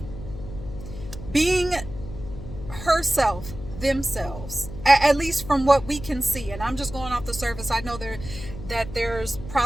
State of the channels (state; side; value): noise; left; hum, 11 dB below the sound